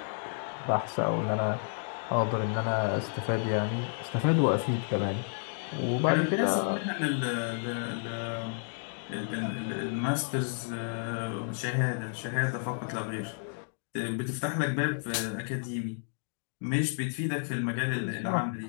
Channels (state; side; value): silent; right; digital silence